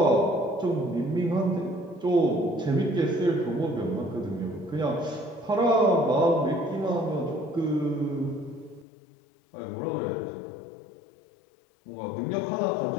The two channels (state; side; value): drops out; right; at 8.8 s